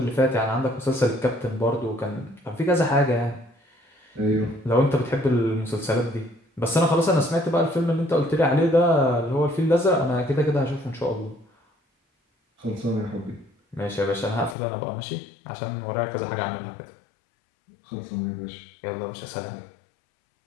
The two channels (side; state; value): right; drops out; at 14.6 s